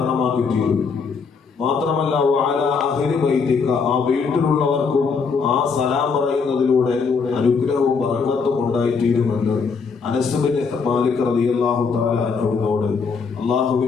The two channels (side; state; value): right; quieter; 5.3 dB